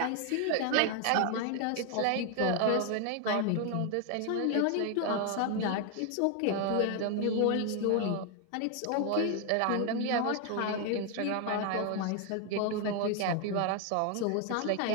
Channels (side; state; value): both; different; correlation 0.01